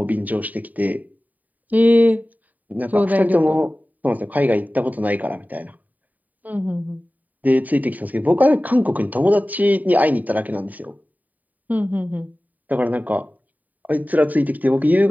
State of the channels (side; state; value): left; late; 0.078 ms